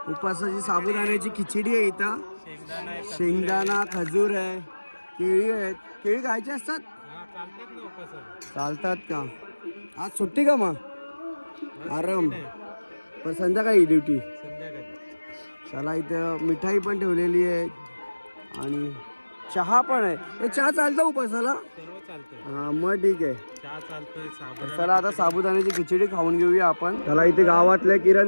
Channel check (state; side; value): inverted; both; correlation -1.00